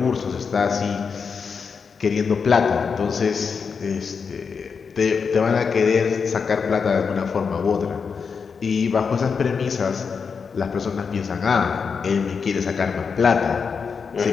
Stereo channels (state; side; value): quieter; right; 5.7 dB